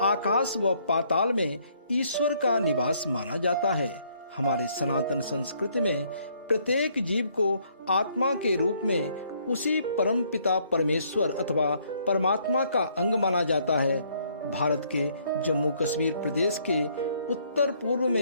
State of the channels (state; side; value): inverted; both; correlation -0.66